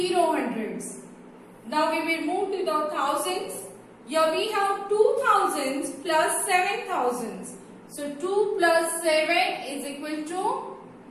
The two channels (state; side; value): identical; both; correlation 1.00